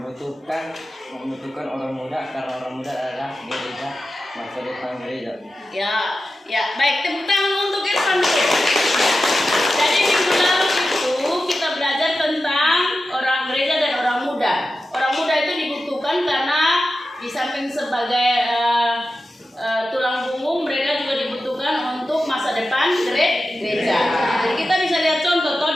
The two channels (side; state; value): both; normal; correlation 0.92